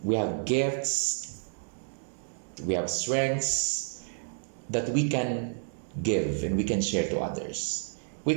We have gifts. We have strengths that we can give and we can share to others. We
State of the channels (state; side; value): silent; left; digital silence